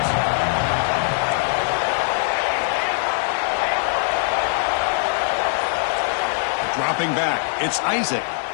Dropping back, it's Isaac.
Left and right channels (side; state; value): right; silent; digital silence